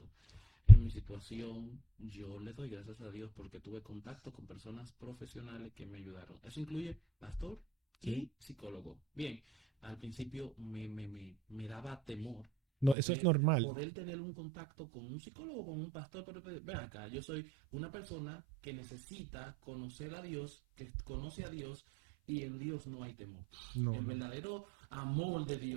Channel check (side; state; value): left; drops out; at 13.0 s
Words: En mi situación, yo le doy gracias a Dios porque tuve contacto con personas profesionales que me ayudaron. Eso incluye pastor Sí. y psicólogo. Bien, al principio me daba temor No, eso es normal. poder tener un contacto con un psicólogo, con un pastor, pero ven acá, yo soy una persona que necesita conocer a Dios, que conoce a Dios y en Dios no hay temor. No, El verdadero amor de